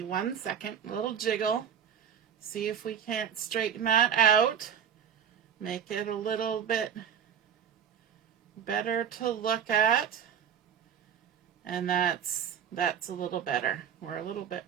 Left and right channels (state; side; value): quieter; left; 8.4 dB